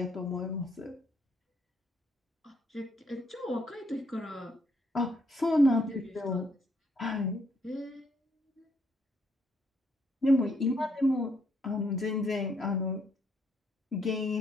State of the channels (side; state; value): both; normal; correlation 0.72